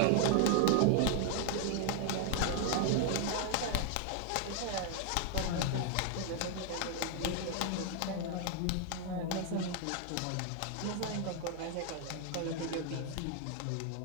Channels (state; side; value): different; both; correlation 0.00